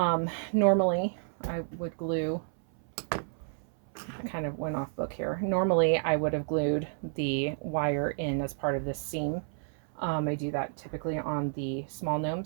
I would glue, I kind of went off book here. Normally I would have glued the wire in as part of this seam. I do that typically on the small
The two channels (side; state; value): left; silent; 57 dB below the other